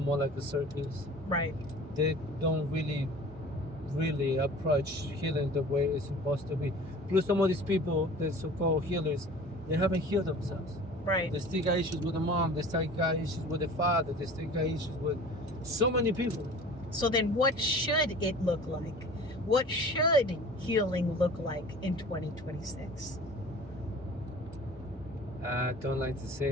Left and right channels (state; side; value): normal; both; correlation 0.43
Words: more like a circus. Right. They don't really approach healing the way it's supposed to be. Plus, some of these people, the so-called healers, they haven't healed themselves. Right. They still got issues with the mom. They still got issues with the father. They still got issues with so many people. So then what should it look like? What should healing look like in 2026? I don't like to